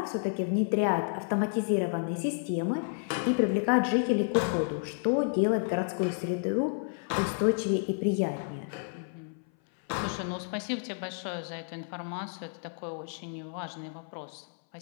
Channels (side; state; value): right; silent; 57 dB below the other